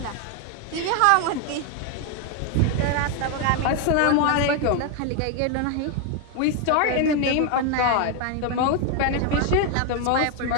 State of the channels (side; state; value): both; different; correlation 0.01